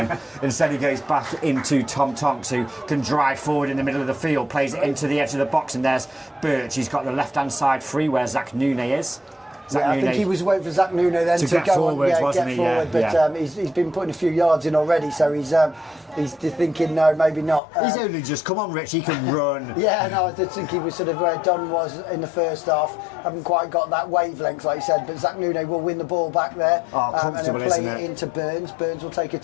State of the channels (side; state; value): right; drops out; at 17.6 s